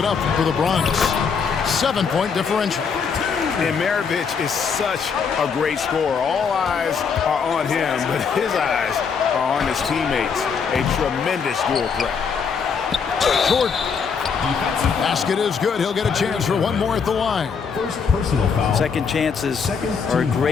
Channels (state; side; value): quieter; right; 6.1 dB